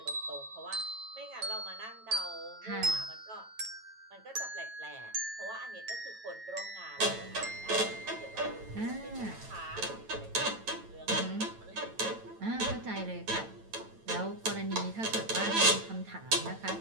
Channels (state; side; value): late; left; 9.0 ms